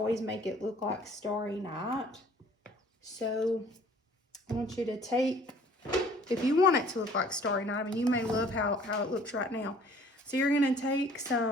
make it look like Starry Night. So I want you to take, if you want it to look like Starry Night, I mean, you may love how it looks right now. So you're gonna take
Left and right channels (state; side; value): normal; both; correlation 0.54